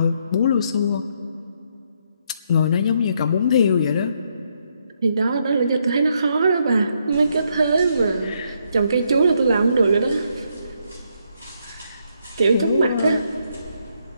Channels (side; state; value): both; inverted; correlation -0.75